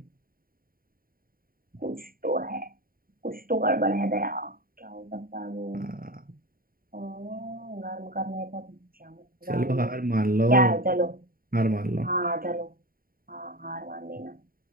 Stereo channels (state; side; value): late; left; 0.42 ms